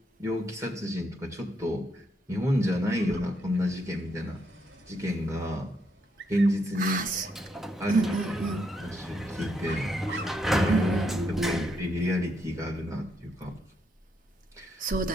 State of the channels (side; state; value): both; normal; correlation 0.77